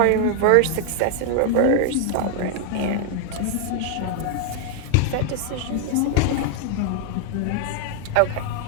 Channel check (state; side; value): different; both; correlation 0.00